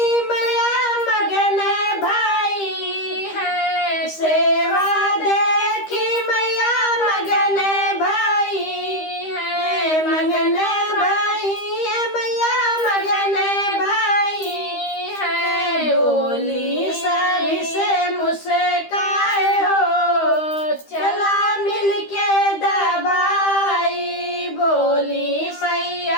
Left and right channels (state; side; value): late; right; 13 ms